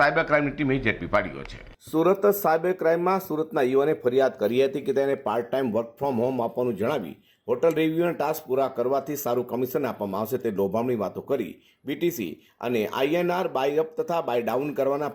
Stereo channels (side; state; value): both; identical; correlation 1.00